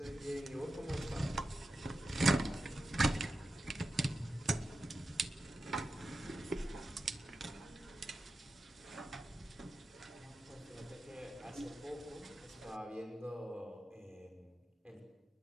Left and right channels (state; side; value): normal; both; correlation 0.91